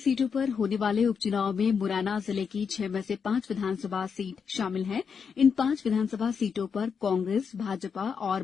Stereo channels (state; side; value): quieter; right; 6.3 dB